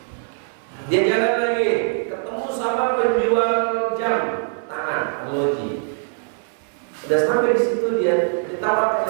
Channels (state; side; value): silent; left; 58 dB below the other